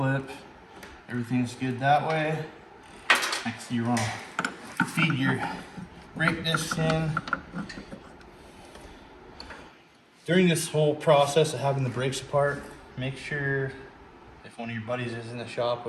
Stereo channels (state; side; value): identical; both; correlation 1.00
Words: everything's good that way. Next, you want to feed your brake discs in. During this whole process of having the brakes apart, make sure if one of your buddies is in the shop